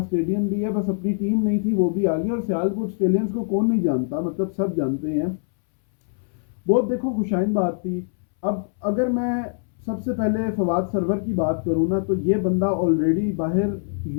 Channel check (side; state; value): right; silent; 63 dB below the other